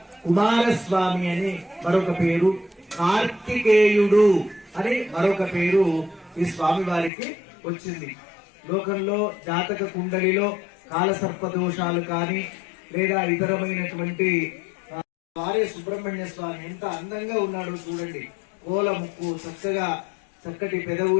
కుమారస్వామి అని మరొక పేరు, కార్తికేయుడు అని మరొక పేరు ఈ స్వామి వారికి వచ్చింది. లోకంలో జాతక కుండలిలో కాలసర్ప దోషాలు కానీ లేదా ఇతరమైనటువంటి వారే సుబ్రహ్మణ్య స్వామి ఎంత అందంగా ఉన్నాడో చూడండి. కోల ముక్కు, చక్కగా చక్కటి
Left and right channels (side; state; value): right; drops out; at 7.1 s